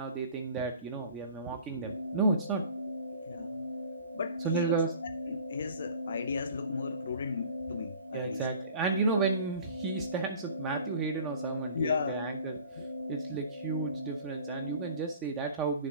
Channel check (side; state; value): both; inverted; correlation -0.46